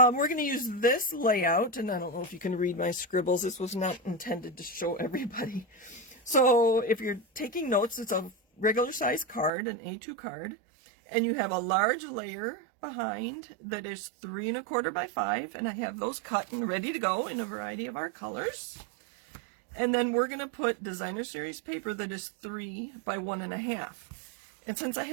going to use this layout, and I don't know if you can read my scribbles. This was not intended to show everybody. So if you're taking notes, it's a regular size card, an A2 card, and you have a large layer behind that is 3 1/4 by 5, and I have those cut and ready to go in a variety of our colors. And then we're going to put Designer Series paper that is 3 by 1 1/2. And since I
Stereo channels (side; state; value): left; drops out; at 9.5 s